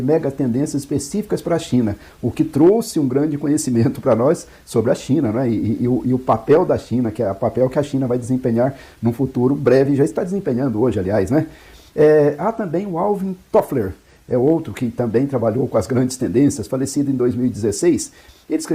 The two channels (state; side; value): identical; both; correlation 1.00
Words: específicas para a China, o que trouxe um grande conhecimento para nós sobre a China, né? E o papel da China, que é o papel que a China vai desempenhar num futuro breve, já está desempenhando hoje, aliás, né? Há também o Alvin Toffler, é outro que também trabalhou com as grandes tendências, falecido em 2016. Ele